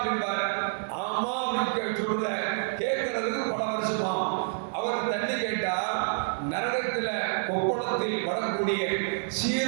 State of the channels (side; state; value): left; silent; 59 dB below the other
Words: ஆமா அப்படின்னு சொல்ற கேட்கறதுக்கு பல வருஷமா. அவர் தண்ணி கேட்டால் நரகத்தில் கொப்பளத்தில் வரக்கூடிய